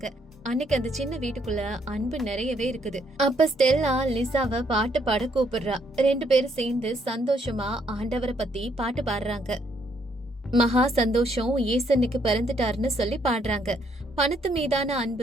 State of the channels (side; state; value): both; normal; correlation 0.71